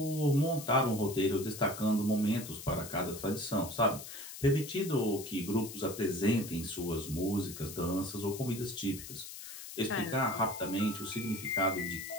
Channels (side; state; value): left; noise; hiss, 11 dB below the sound